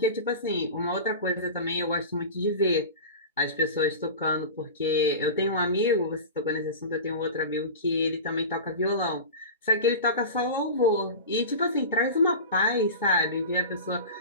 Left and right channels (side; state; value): both; inverted; correlation -0.30